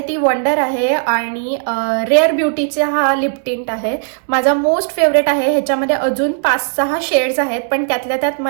ती वंडर आहे आणि रेअर ब्युटीचा हा लिप टिंट आहे. माझा मोस्ट फेवरेट आहे. ह्याच्यामध्ये अजून 5-6 शेड्स आहेत, पण त्यातल्या त्यात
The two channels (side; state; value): left; silent; digital silence